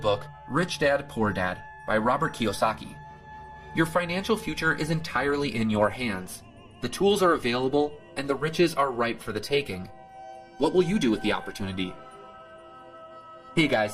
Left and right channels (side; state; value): both; identical; correlation 1.00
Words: Rich Dad, Poor Dad by Robert Kiyosaki. Your financial future is entirely in your hands. The tools are available, and the riches are ripe for the taking. What will you do with the opportunity? Hey guys,